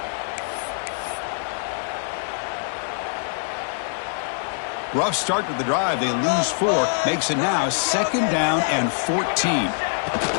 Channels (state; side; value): silent; right; digital silence